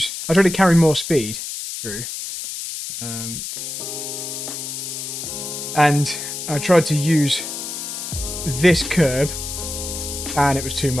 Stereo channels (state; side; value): noise; left; hiss, 6 dB below the sound